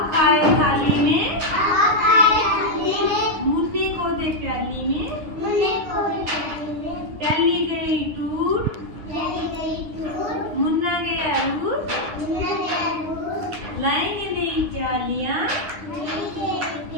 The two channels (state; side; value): late; left; 9.8 ms